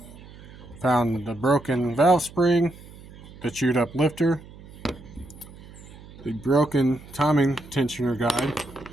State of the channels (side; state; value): right; noise; hum, 19 dB below the sound